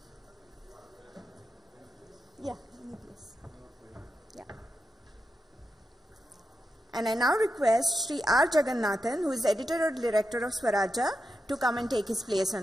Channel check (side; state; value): both; normal; correlation 0.88